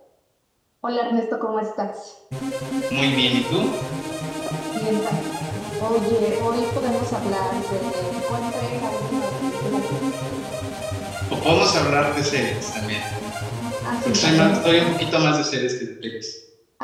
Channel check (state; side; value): identical; both; correlation 1.00